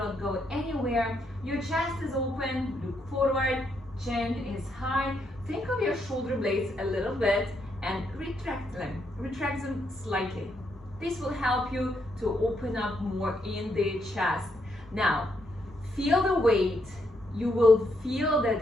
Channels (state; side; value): normal; both; correlation 0.77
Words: go anywhere. Your chest is open, look forward, chin is high. Think of your shoulder blades a little bit and retract them slightly. This will help you to open up more in the chest. Now, feel the weight. You will feel